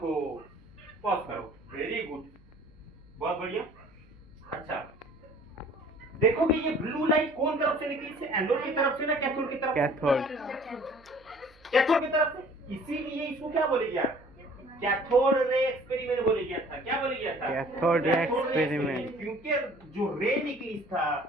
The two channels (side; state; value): right; noise; hum, 28 dB below the sound